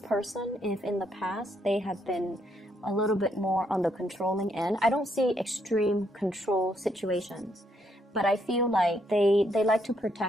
person, if in the past they have been a little bit more on the controlling end, I don't see extreme control situations, but I feel like they like to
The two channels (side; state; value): both; normal; correlation 0.74